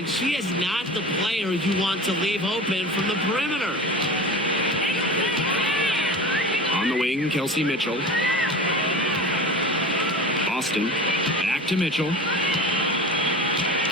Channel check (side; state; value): both; normal; correlation 0.33